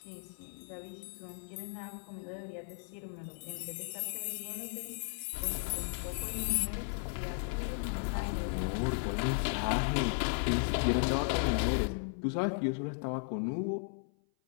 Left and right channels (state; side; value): silent; right; 54 dB below the other